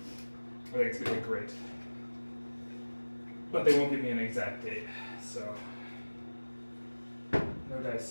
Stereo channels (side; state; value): both; inverted; correlation -1.00